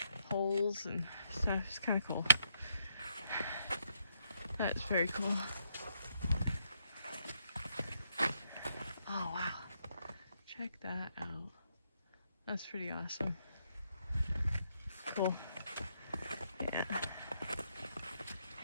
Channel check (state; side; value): inverted; both; correlation -0.76